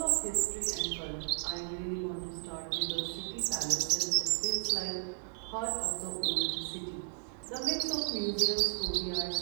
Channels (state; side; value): silent; left; 55 dB below the other